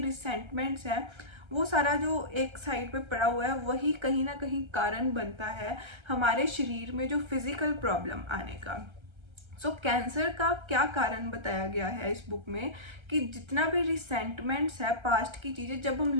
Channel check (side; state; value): left; late; 1.3 ms